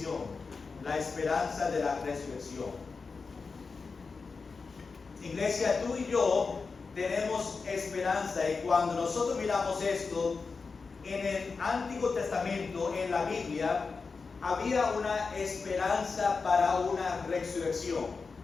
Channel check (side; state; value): right; quieter; 4.6 dB